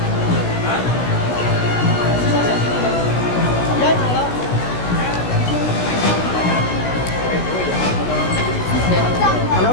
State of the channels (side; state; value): right; late; 16 ms